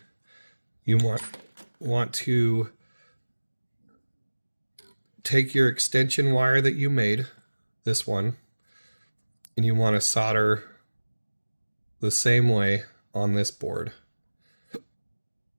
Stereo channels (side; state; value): both; inverted; correlation -1.00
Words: you want to take your extension wire that you made, this one, and you want to solder the same way on this board.